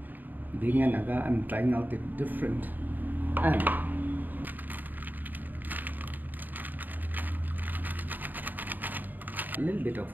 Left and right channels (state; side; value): late; left; 0.087 ms